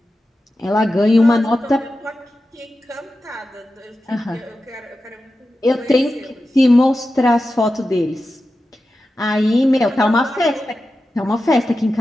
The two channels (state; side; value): normal; both; correlation 0.92